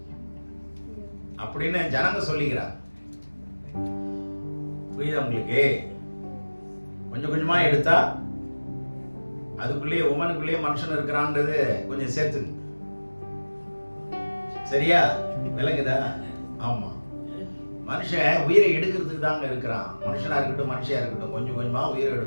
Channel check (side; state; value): both; inverted; correlation -1.00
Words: அப்படின்னு ஜனங்க சொல்லிக்கிறார். புரியுதா உங்களுக்கு? கொஞ்சம் கொஞ்சமா எடுத்தா அதுக்குள்ளேயே உமனுக்குள்ளேயே மனுஷன் இருக்கிறான்றது கொஞ்சம் சேர்த்துங்க. சரியா? விளங்குதா? ஆமா. மனுஷன் உயிரை எடுக்கிறதுக்கு தாங்க இருக்கிறான். மனுஷனா இருக்கட்டும், மனுஷியா இருக்கட்டும், கொஞ்சம் கொஞ்சமா உயிரை